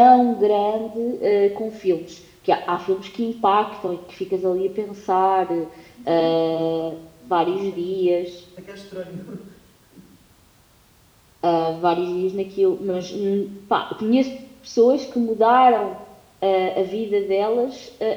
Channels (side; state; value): both; identical; correlation 1.00